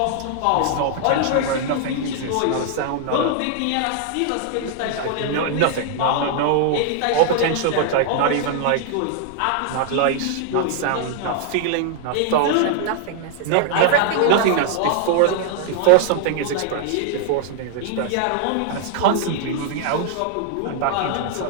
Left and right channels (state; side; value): different; both; correlation 0.00